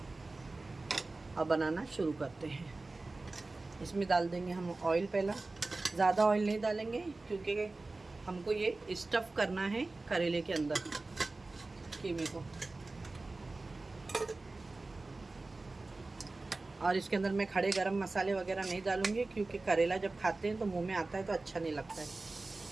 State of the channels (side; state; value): left; quieter; 3.3 dB